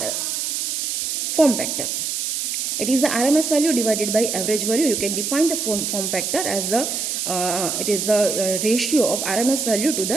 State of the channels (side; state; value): right; noise; hiss, 2 dB below the sound